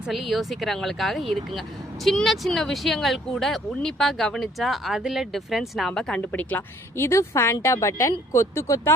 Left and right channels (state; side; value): normal; both; correlation 0.61